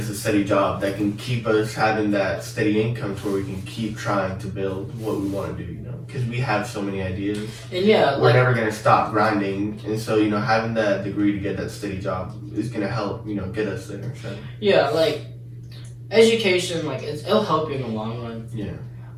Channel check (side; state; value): both; identical; correlation 1.00